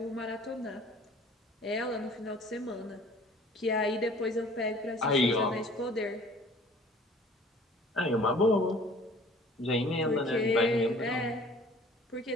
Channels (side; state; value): both; normal; correlation 0.51